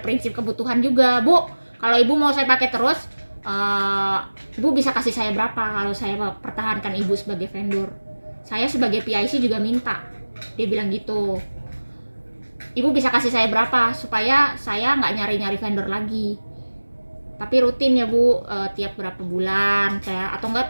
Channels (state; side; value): inverted; both; correlation -1.00